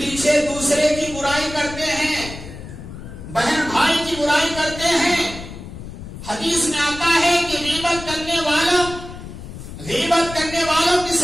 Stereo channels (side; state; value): left; noise; rumble, 12 dB below the sound